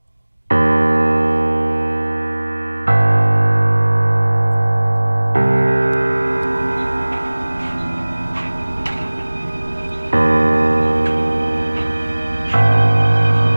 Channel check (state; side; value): inverted; both; correlation -1.00